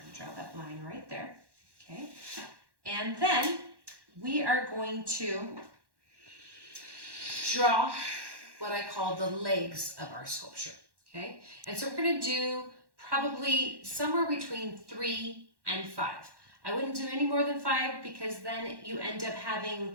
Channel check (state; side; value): late; left; 1.1 ms